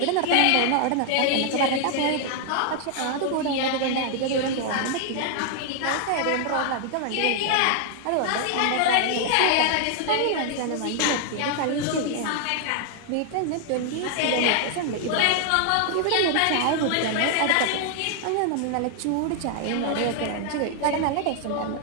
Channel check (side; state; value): both; different; correlation 0.00